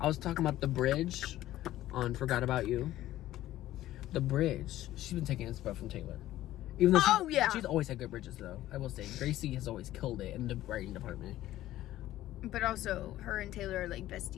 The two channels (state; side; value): quieter; right; 14.4 dB